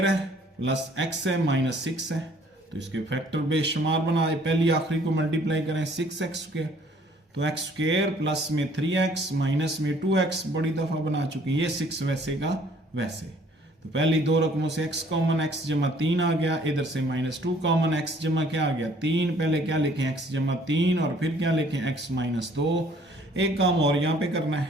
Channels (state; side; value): normal; both; correlation 0.59